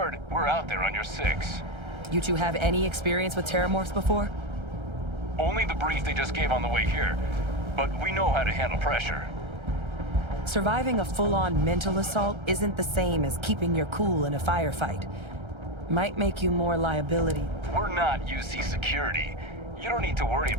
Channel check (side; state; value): left; late; 1.3 ms